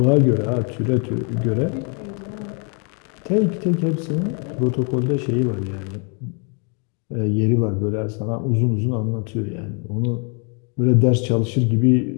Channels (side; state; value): right; quieter; 36.9 dB